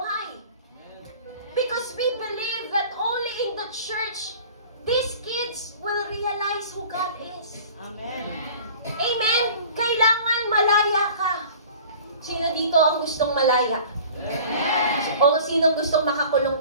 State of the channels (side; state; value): both; inverted; correlation -0.44